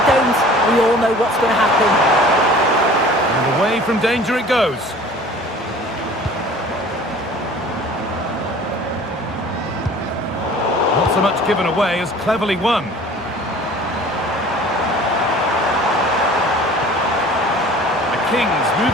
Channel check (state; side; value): normal; both; correlation 0.46